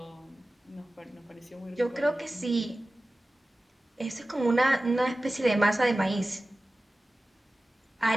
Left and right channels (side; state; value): both; normal; correlation 0.96